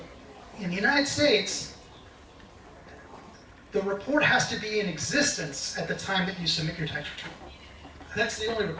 In the United States, the report has to be in existence at the time that you submit your tax return. That's the only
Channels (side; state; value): both; identical; correlation 1.00